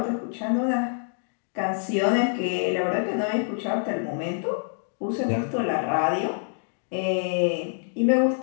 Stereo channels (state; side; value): silent; right; digital silence